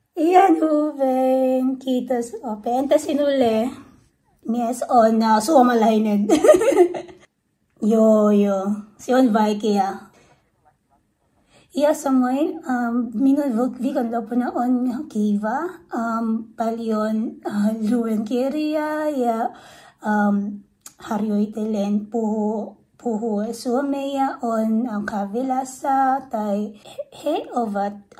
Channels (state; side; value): identical; both; correlation 1.00